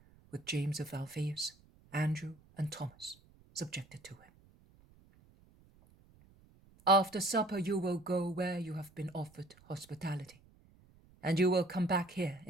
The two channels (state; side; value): noise; right; rumble, 27 dB below the sound